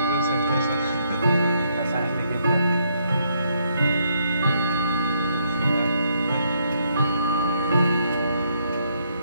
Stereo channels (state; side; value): inverted; both; correlation -0.73